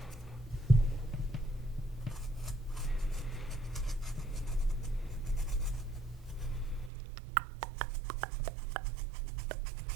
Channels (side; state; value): left; drops out; at 6.9 s